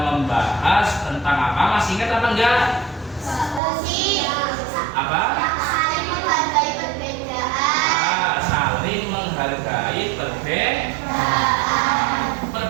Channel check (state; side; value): drops out; left; at 3.6 s